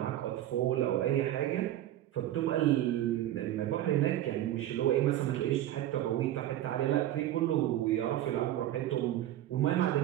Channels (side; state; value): left; quieter; 13.1 dB